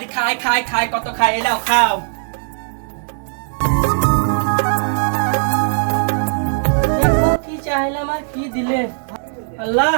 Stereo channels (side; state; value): left; silent; digital silence